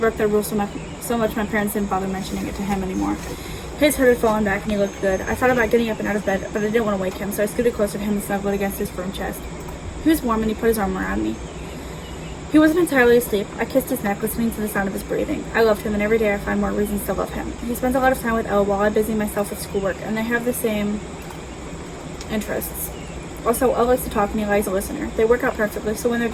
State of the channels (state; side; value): identical; both; correlation 1.00